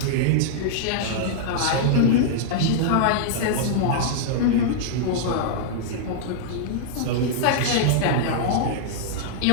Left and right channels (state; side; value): different; both; correlation -0.02